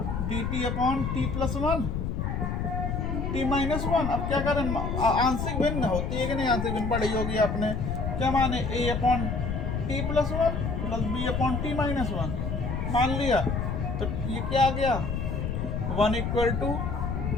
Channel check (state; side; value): noise; left; rumble, 2 dB below the sound